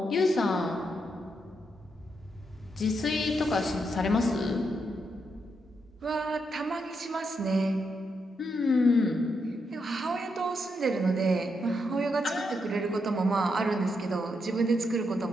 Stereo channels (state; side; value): normal; both; correlation 0.81